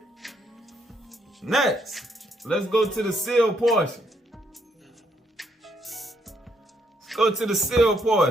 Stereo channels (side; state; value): both; normal; correlation 0.73